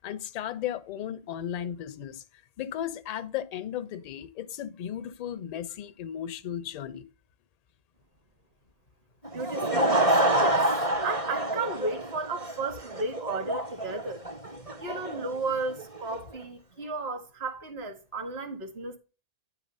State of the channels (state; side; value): late; right; 1.8 ms